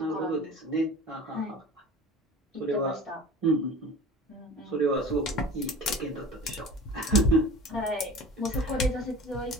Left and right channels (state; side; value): normal; both; correlation 0.39